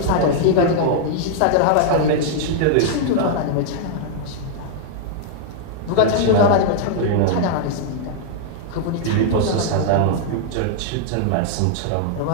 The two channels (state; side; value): different; both; correlation -0.01